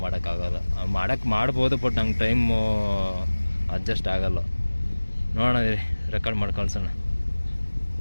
ಮಾಡೋಕ್ಕಾಗಲ್ಲ. ಮಾಡ್ಬೋದು, ಬಟ್ ನಂಗೆ ಟೈಮು ಅಡ್ಜಸ್ಟ್ ಆಗಲ್ಲ. ನೋಡೋಣ, ರೆಕಾರ್ಡ್ ಮಾಡಿ ಕಳ್ಸೋಣ.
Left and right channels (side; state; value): both; inverted; correlation -1.00